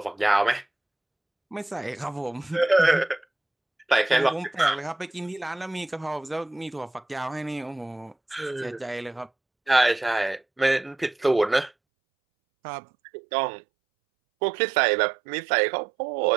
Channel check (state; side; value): drops out; left; at 11.7 s